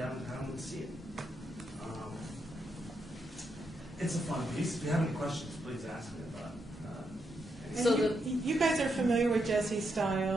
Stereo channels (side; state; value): both; normal; correlation 0.81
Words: and see it. It's a fun piece. If you have any questions, please ask me about it. So you guys are familiar with Jesse's